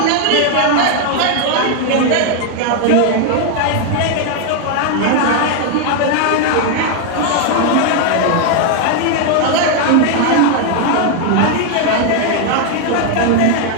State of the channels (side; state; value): both; different; correlation 0.00